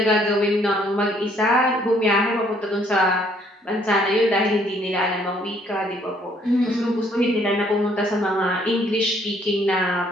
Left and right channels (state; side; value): normal; both; correlation 0.65